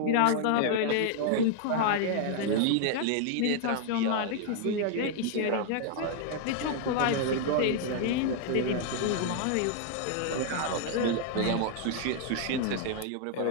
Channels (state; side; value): different; both; correlation 0.00